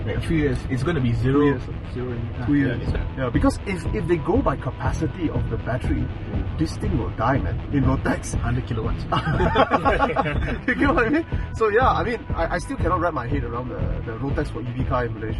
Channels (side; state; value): both; identical; correlation 1.00